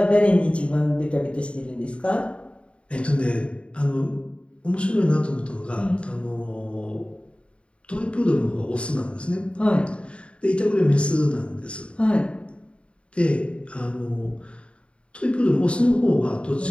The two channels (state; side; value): late; right; 0.058 ms